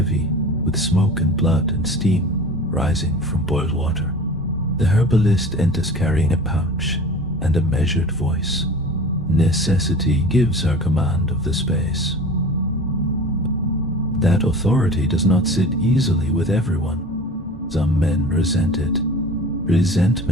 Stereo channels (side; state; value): both; normal; correlation 0.39